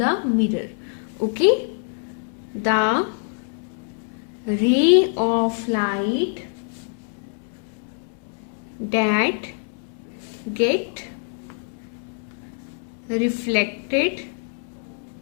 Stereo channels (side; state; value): right; silent; 55 dB below the other